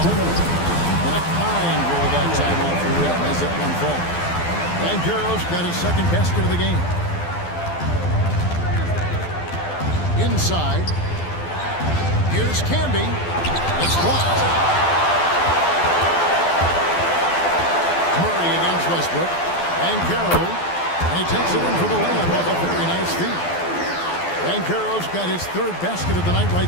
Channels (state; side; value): late; right; 12 ms